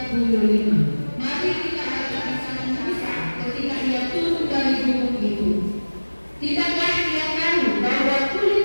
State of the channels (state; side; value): inverted; both; correlation -1.00